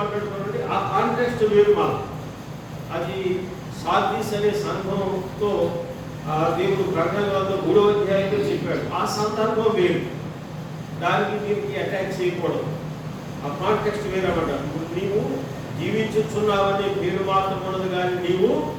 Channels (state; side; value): identical; both; correlation 1.00